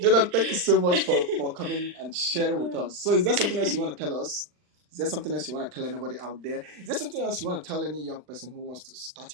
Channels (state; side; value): late; left; 40 ms